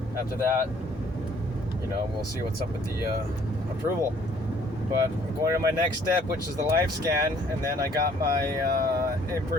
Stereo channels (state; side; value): normal; both; correlation 0.60